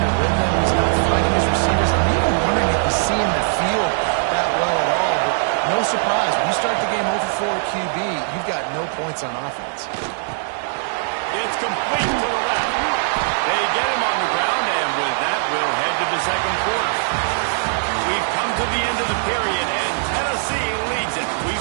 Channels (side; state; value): left; silent; 65 dB below the other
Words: rhythm. He's not finding his receivers. I'm even wondering if he's seeing the field that well at all. But no surprise, when you start the game 0 for 4 QB, you've got no points on offense. It's complete to the left. They get him on the ground, and with that, we'll head to the second quarter. We've come to the end of the period, and Tennessee leads it. We